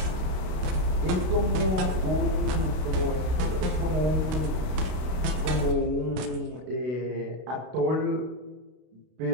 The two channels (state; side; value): late; left; 33 ms